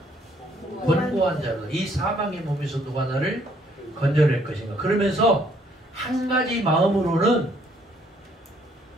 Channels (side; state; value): both; normal; correlation 0.65